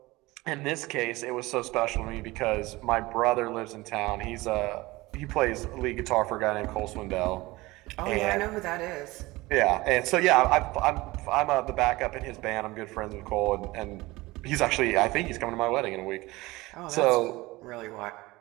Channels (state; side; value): quieter; left; 20.6 dB